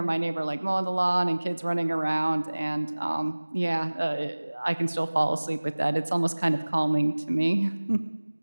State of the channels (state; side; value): inverted; both; correlation -1.00